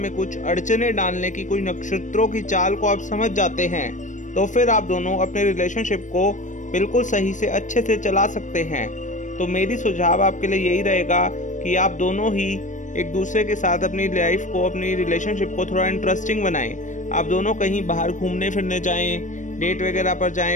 कुछ अड़चने डालने की कोई नक्षत्रों की चाल को आप समझ जाते हैं, तो फिर आप दोनों अपने रिलेशनशिप को बिल्कुल सही से अच्छे से चला सकते हैं। तो मेरी सुझाव आपके लिए यही रहेगा कि आप दोनों ही एक दूसरे के साथ अपनी लाइफ को, अपनी रिलेशनशिप को थोड़ा इंटरेस्टिंग बनाएं। आप दोनों कहीं बाहर घूमने फिरने जाएं, डेट वगैरह पर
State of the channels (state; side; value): late; right; 0.36 ms